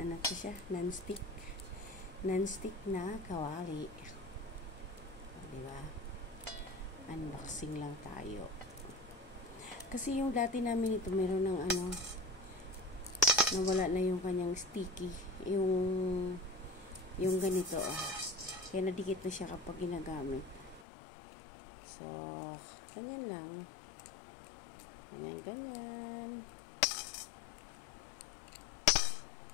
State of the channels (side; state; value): right; drops out; at 20.9 s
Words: to siya? Non-stick. Non-stick na kawali. Diba? Unboxing lang tayo. Kasi yung dati namin ito, meron ng nawala na yung kanyang sticky. Yung ganito, Kaya nadikit na siya kapag ginagamit. So, ganyan lang. Ganyan.